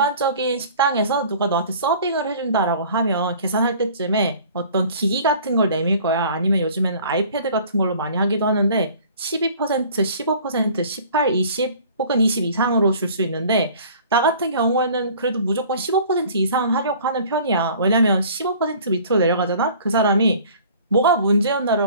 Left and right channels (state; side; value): inverted; both; correlation -0.49